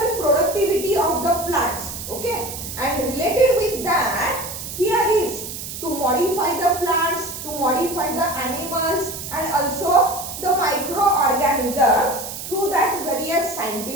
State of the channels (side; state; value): right; noise; hiss, 8 dB below the sound